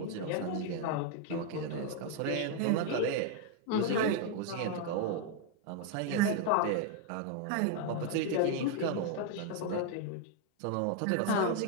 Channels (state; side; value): different; both; correlation 0.00